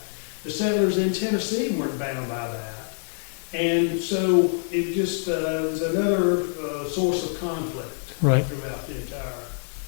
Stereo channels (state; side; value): silent; right; digital silence